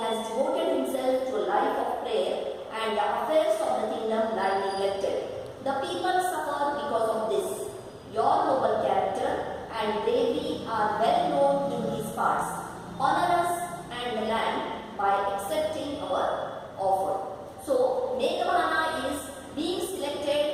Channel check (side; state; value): both; identical; correlation 1.00